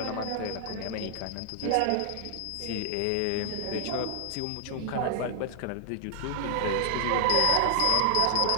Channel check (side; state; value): both; different; correlation 0.00